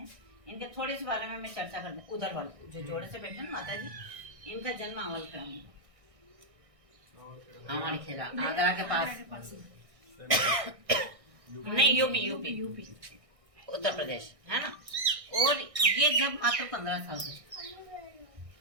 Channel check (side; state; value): left; late; 1.6 ms